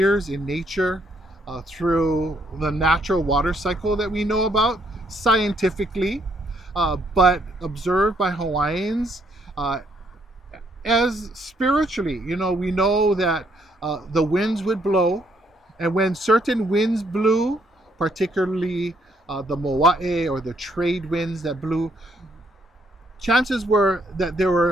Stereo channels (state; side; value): normal; both; correlation 0.71